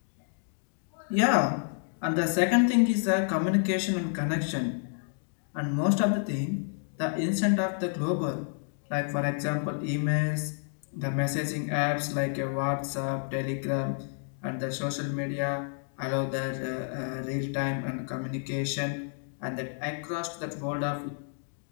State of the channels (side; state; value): right; silent; digital silence